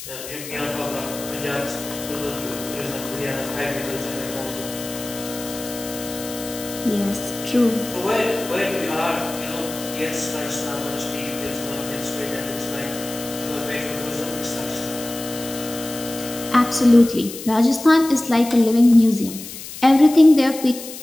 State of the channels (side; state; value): left; noise; hiss, 11 dB below the sound